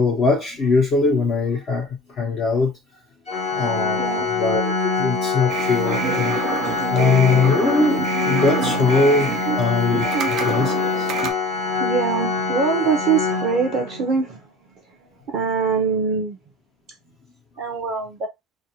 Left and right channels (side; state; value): both; normal; correlation 0.40